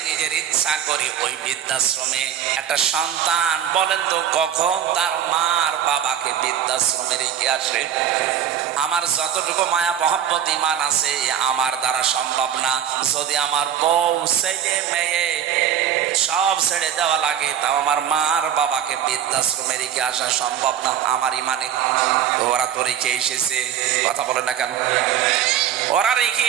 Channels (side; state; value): left; quieter; 9.6 dB